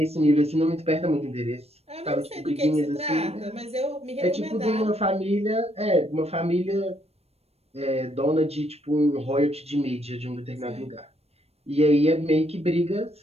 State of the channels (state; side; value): late; left; 0.30 ms